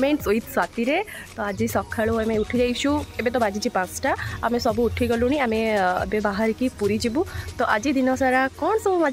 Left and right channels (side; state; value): both; identical; correlation 1.00